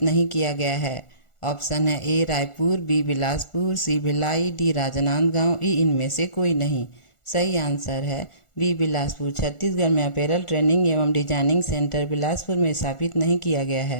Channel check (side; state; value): right; late; 1.4 ms